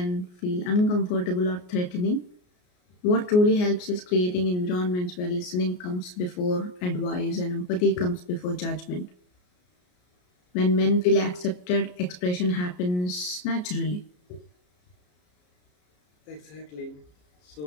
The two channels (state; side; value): late; right; 33 ms